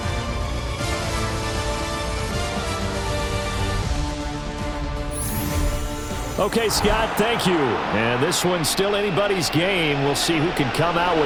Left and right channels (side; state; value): both; identical; correlation 1.00